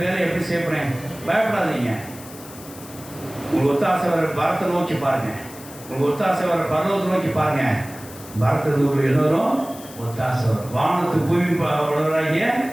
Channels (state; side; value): noise; left; hiss, 17 dB below the sound